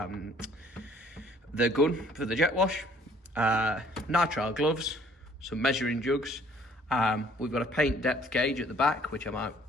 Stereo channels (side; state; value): both; normal; correlation 0.59